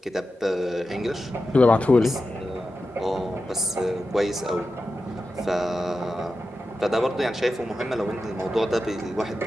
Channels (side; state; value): both; normal; correlation 0.91